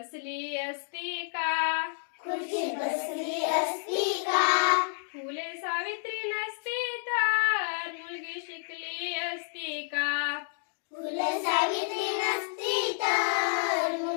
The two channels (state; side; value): silent; right; digital silence